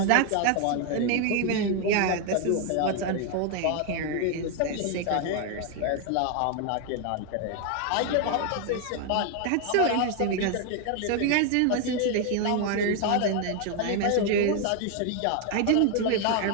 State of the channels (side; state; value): both; different; correlation 0.01